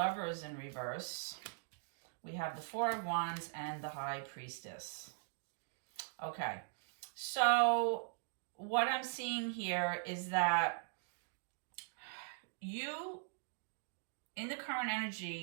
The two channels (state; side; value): silent; left; digital silence